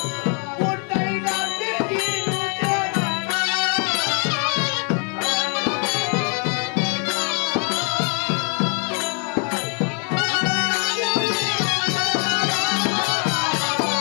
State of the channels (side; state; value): right; quieter; 39.0 dB